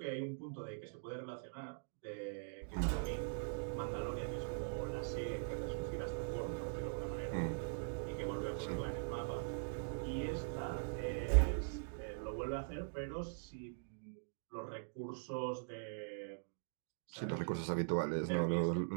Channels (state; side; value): silent; left; digital silence